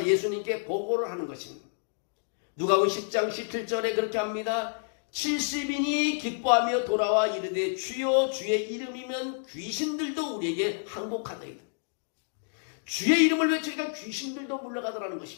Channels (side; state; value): right; silent; digital silence